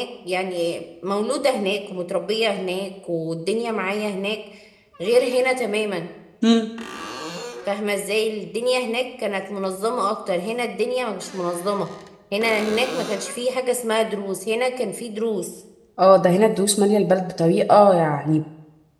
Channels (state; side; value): identical; both; correlation 1.00